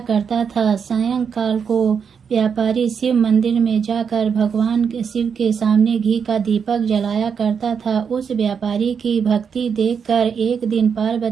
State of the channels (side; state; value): left; quieter; 6.7 dB